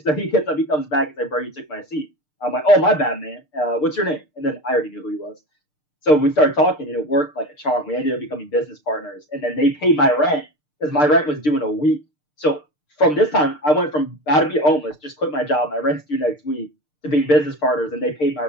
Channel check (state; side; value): late; right; 6.7 ms